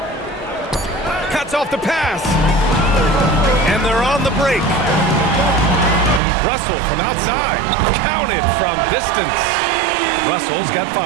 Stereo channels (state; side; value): drops out; left; at 6.2 s